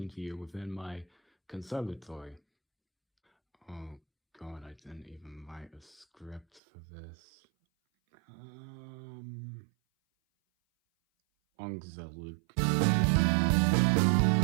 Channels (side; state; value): left; drops out; at 6.6 s